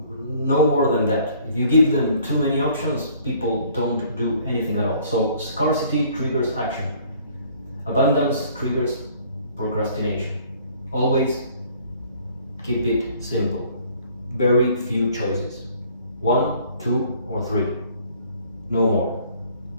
no more than that. If you give them too many options, people don't do anything at all. So scarcity triggers action, abundance triggers procrastination. Always keep it simple. Very few choices. 1, 2, or 3. No more.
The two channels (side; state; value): both; inverted; correlation -0.57